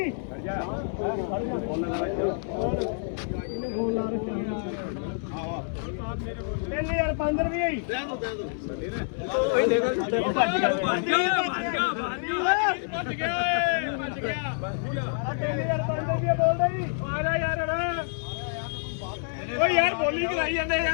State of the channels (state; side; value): silent; right; 60 dB below the other